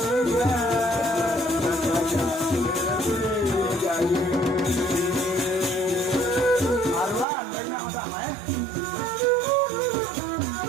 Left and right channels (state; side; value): drops out; left; at 7.2 s